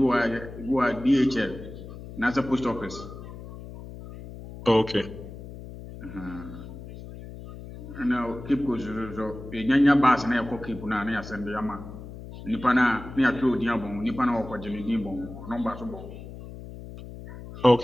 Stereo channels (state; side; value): noise; left; hum, 13 dB below the sound